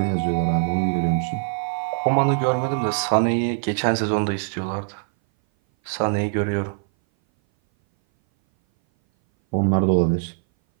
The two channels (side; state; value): left; silent; 59 dB below the other